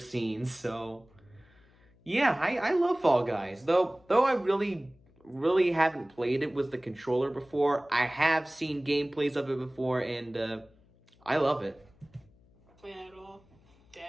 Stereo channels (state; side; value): noise; left; hum, 30 dB below the sound